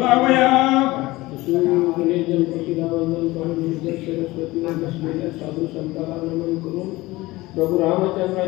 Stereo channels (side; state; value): right; quieter; 19.7 dB